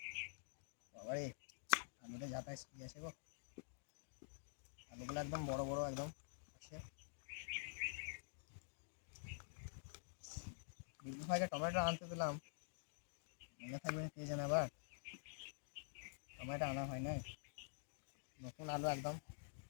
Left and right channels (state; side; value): silent; right; digital silence